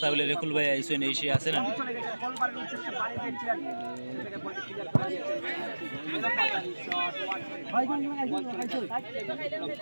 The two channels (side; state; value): both; inverted; correlation -1.00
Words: তাহলে রেকুল ভাই আইসো এসে আছে না